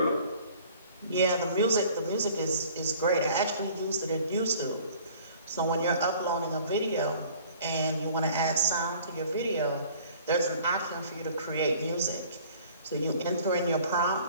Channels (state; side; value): inverted; both; correlation -0.51